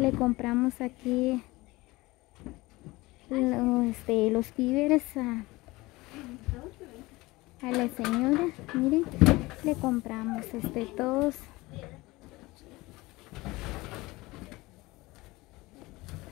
compramos aquí los víveres a la señora. Miren, le compramos todos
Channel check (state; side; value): quieter; right; 21.0 dB